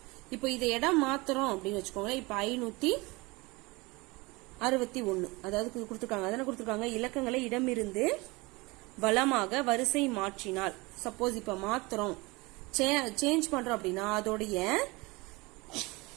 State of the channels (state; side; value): quieter; left; 24.3 dB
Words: இப்போ இதை இடம் மாத்துறோம் அப்படின்னு வச்சுக்கோங்களேன். இப்போ 561 அதாவது கொடுத்துருக்காங்க. அதனை கொடுத்துருக்காங்க இலக்கங்களை இடமிருந்து வலமாக வரிசை மாற்றினால். சப்போஸ் இப்ப மாத்துறோம் சேஞ்ச் பண்றோம் அப்படின்னா அதோடைய